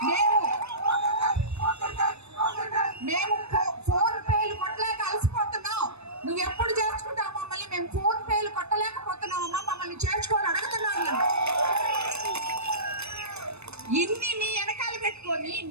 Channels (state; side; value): late; left; 0.80 ms